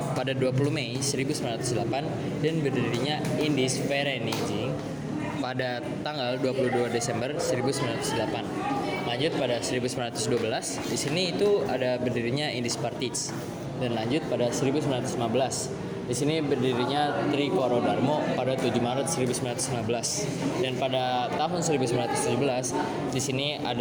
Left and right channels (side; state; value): both; identical; correlation 1.00